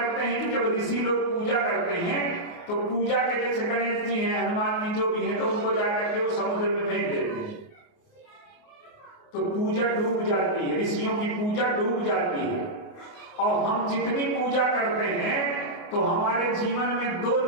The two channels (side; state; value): right; late; 28 ms